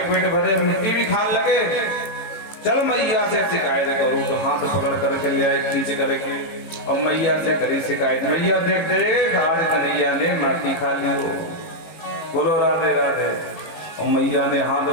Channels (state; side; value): late; right; 18 ms